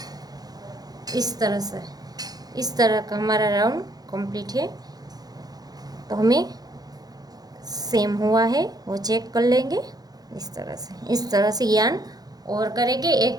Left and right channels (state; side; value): late; left; 0.19 ms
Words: इस तरह से। इस तरह का हमारा राउंड कंप्लीट है। तो हमें सेम हुआ है वो चेक कर लेंगे इस तरह से यान और करेंगे एक